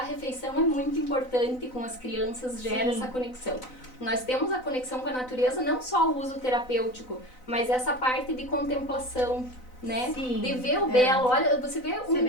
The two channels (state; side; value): late; right; 4.0 ms